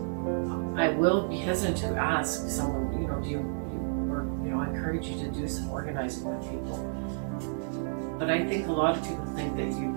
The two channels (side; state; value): left; silent; digital silence